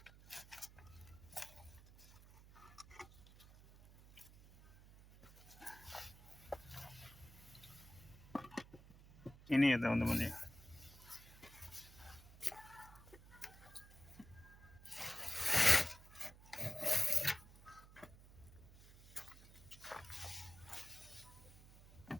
Ini ya teman-teman ya.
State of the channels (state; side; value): noise; right; hum, 19 dB below the sound